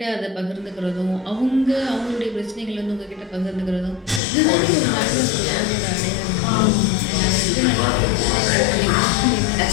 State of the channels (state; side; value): drops out; right; at 4.2 s